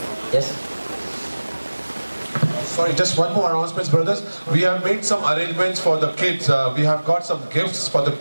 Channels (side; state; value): both; inverted; correlation -1.00